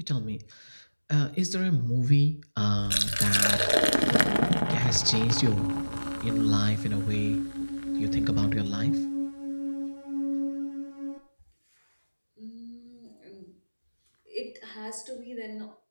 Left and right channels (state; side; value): inverted; both; correlation -1.00